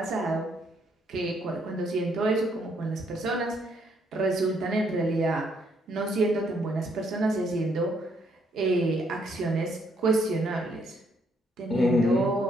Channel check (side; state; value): both; normal; correlation 0.71